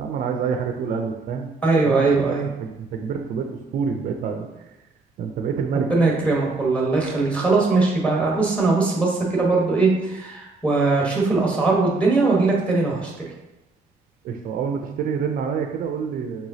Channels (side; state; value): left; quieter; 3.6 dB